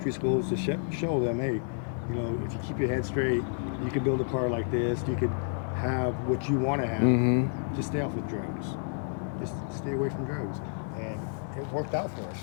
schools to show them, hey, you know, if you keep your head straight, you can build a car like this. You could have what you want to have. Mm-hmm. Just stay off with drugs. Just stay away from drugs. And it worked out for us.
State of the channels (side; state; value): right; silent; digital silence